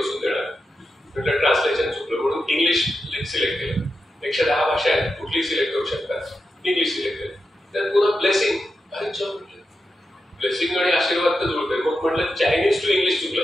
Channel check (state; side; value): normal; both; correlation 0.88